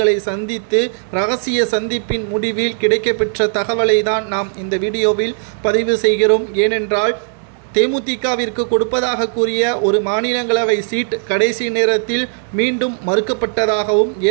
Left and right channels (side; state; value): left; silent; 68 dB below the other